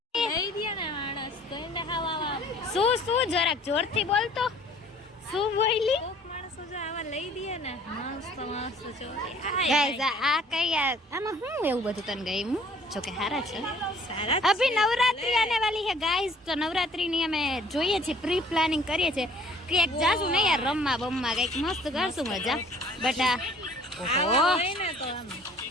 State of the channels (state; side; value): normal; both; correlation 0.54